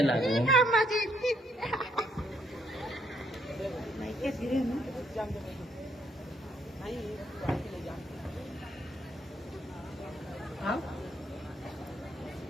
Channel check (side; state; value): both; normal; correlation 0.70